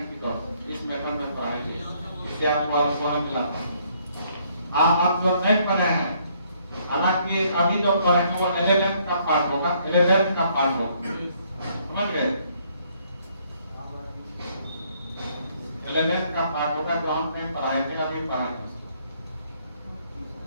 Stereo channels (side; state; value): both; inverted; correlation -0.67